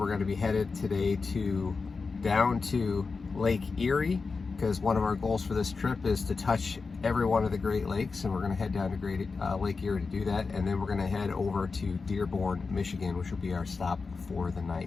going to be headed today down to Lake Erie, because one of our goals for this trip is to touch every one of the Great Lakes, and we're going to head down to Lake Erie to do that, and then we're going to head over to Dearborn, Michigan, which will be our stop for the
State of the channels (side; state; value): right; quieter; 4.5 dB